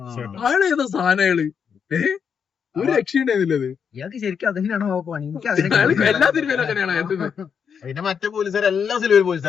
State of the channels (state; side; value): quieter; right; 6.9 dB